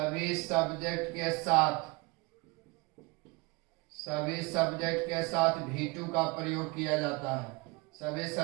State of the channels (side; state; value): left; quieter; 25.9 dB